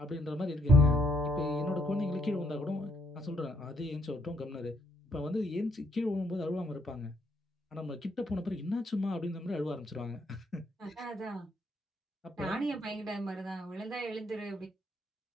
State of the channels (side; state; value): both; normal; correlation 0.71